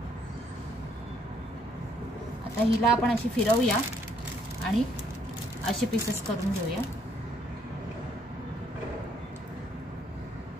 आता हिला आपण अशी फिरवूया आणि असे पीसेस करून घेऊया.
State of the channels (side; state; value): both; normal; correlation 0.68